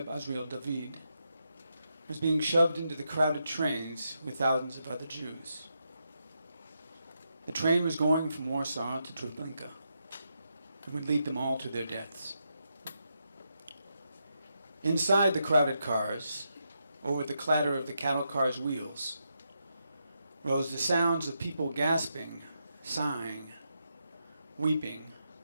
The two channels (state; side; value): inverted; both; correlation -0.83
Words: Azriel David was being shoved into the crowded trains with thousands of other Jews. The train was going from Warsaw to Treblinka and would lead them all to their deaths. Inside the crowded cars, or with the clatter of the cattle cars' wheels, rose the sounds of people gasping, sighing, weeping,